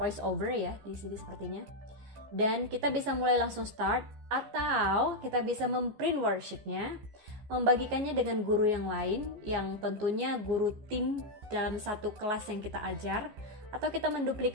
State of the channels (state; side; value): late; left; 15 ms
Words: over ya di sini sepertinya. Dan kita bisa mulai langsung start, atau kita bisa memprint worksheetnya, membagikannya dengan guru yang lain, yang tentunya guru tim dalam satu kelas yang kita ajar, atau kita